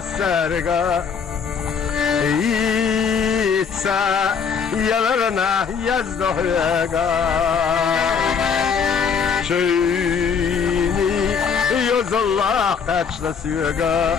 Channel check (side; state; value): right; quieter; 6.3 dB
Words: يتسا يلرنا يزدهيقا شيني يوز الله قاتشنا